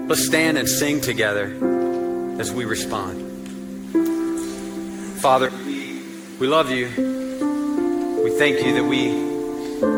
Let's stand and sing together as we respond. Father, we love you. We thank you that we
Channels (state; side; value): identical; both; correlation 1.00